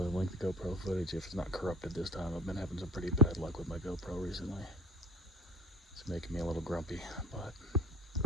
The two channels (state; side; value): normal; both; correlation 0.35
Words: link the GoPro footage if it's not corrupted this time. I've been having some pretty bad luck with my GoPro recently. It's making me a little grumpy, but